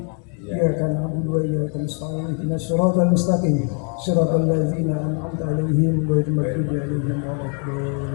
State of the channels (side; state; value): right; quieter; 39.7 dB